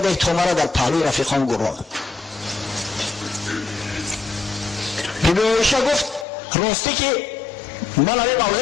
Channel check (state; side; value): drops out; right; at 6.2 s